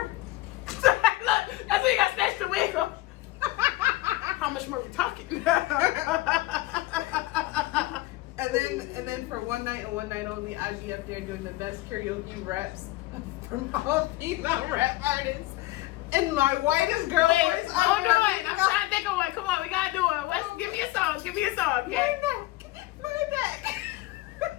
Look, that's when you got snatched the wig off. How much more are we talking? and then for one night and one night only, I'd be up there doing the best karaoke raps from all female rap artists. And my whitest girl voice. Hold on. I'm trying to think of one. Come on, we gotta do it. Give me a song. Okay? My neck.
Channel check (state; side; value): quieter; right; 18.4 dB